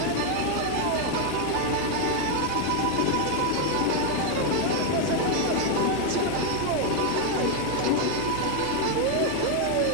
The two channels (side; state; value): both; different; correlation 0.01